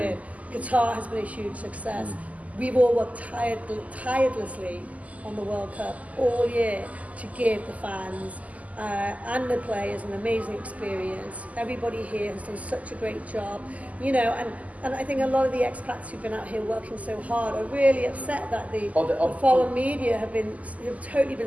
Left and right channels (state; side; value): late; left; 0.073 ms